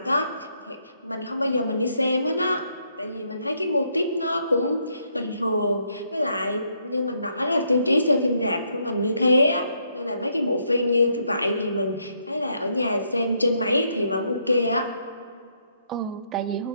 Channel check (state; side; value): inverted; both; correlation -0.74